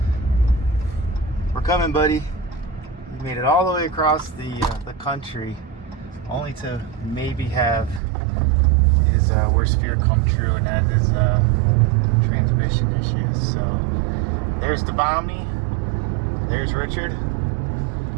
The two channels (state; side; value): drops out; left; at 8.0 s